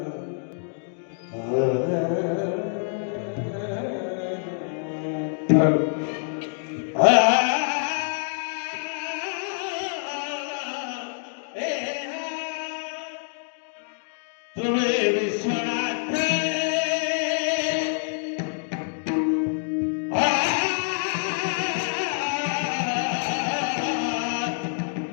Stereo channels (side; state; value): right; silent; digital silence